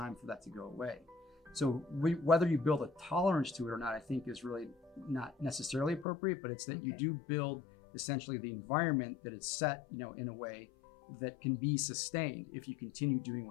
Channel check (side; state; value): right; drops out; at 6.1 s